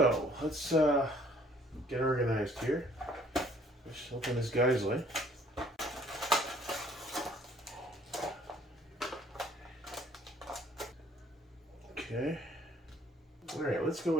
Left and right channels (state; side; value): normal; both; correlation 0.59